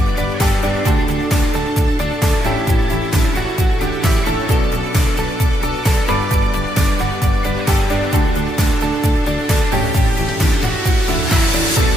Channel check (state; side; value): normal; both; correlation 0.79